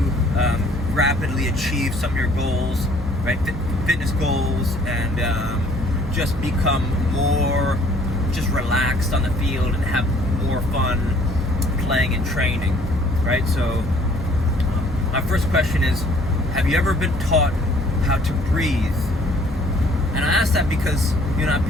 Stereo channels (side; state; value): both; normal; correlation 0.58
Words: rapidly achieve some of your goals, right? Fitness goals, and just become more just relaxed on the field and have more fun playing and training, right? So my first question is, have you ever been taught how to breathe? And I ask that because, you know, I've